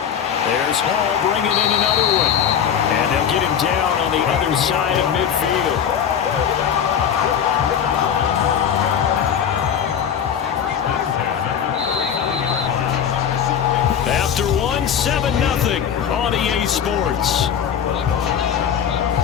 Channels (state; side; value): quieter; right; 8.3 dB